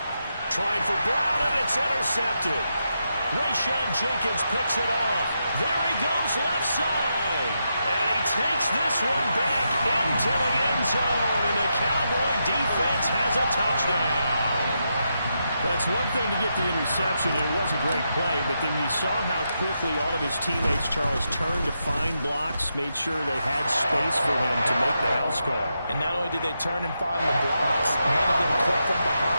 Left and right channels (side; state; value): both; inverted; correlation -0.84